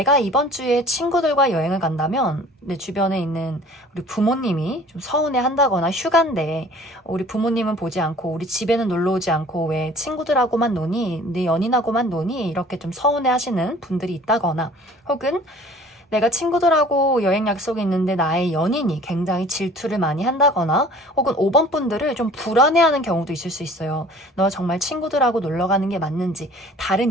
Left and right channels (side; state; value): both; normal; correlation 0.49